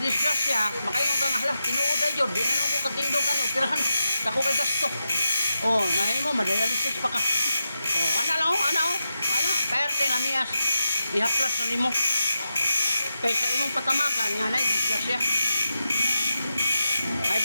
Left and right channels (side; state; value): both; inverted; correlation -0.89